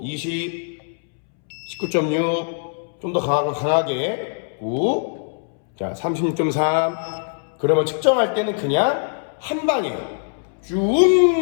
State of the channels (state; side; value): silent; right; 64 dB below the other